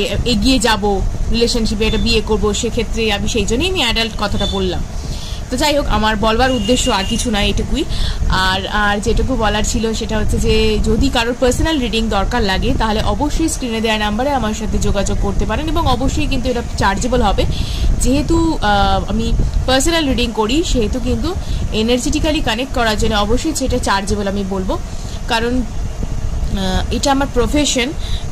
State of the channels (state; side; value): identical; both; correlation 1.00